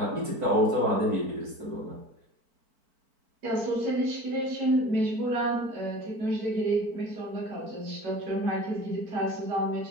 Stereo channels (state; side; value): late; left; 4.5 ms